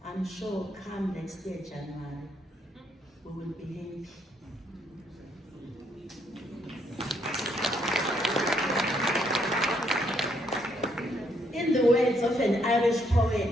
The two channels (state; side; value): normal; both; correlation 0.72